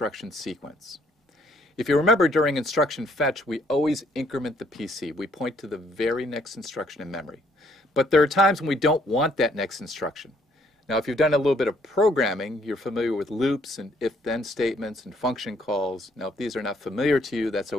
sequence. If you remember, during instruction fetch, we always increment the PC. We point to the very next instruction in memory. But there are times when we don't want that next instruction. Now if you've done a little bit of programming, you're familiar with loops and if-then statements and function calls. Now if these are not familiar to you, that's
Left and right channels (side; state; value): both; normal; correlation 0.66